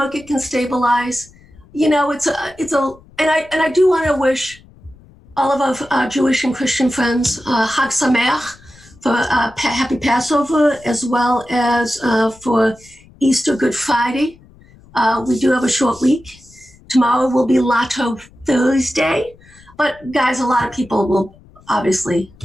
can stabilize. And I do want to wish all of our Jewish and Christian friends Chag Sameach for Happy Passover, as well as for Easter, Good Friday. We do have a short week. Tomorrow will be Lotto Thursday. But guys, a lot of people will obviously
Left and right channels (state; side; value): noise; left; rumble, 26 dB below the sound